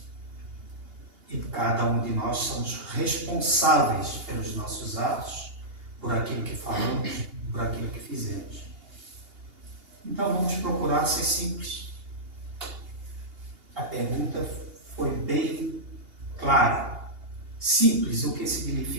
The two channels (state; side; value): late; left; 2.8 ms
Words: E cada um de nós somos responsáveis pelos nossos atos, por aquilo que falamos, por aquilo que fizemos. Então vamos procurar ser simples. A pergunta foi bem clara. Simples, o que